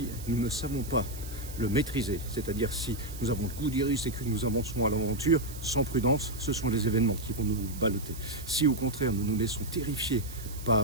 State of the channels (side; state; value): right; noise; hiss, 15 dB below the sound